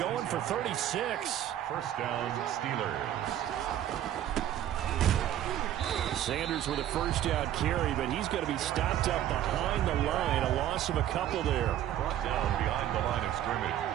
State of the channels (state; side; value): quieter; left; 11.7 dB